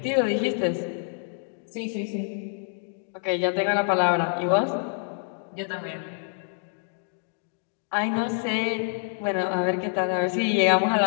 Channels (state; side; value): silent; right; 60 dB below the other